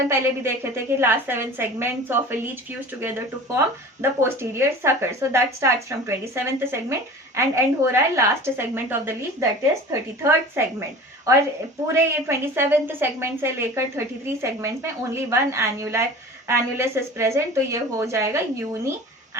पहले भी देखे थे कि last 7 segments of a leech fuse together to form the posterior sucker. So that starts from 27th segment and end हो रहा है last segment of the leech, that is 33rd segment. और पूरे ये 27th सेगमेंट से लेकर 33 सेगमेंट्स में ओनली वन एन्युलस इज प्रेजेंट, तो ये हो जाएगा यूनी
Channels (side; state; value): both; normal; correlation 0.39